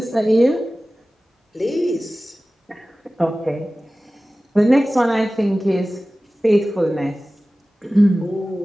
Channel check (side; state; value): both; normal; correlation 0.97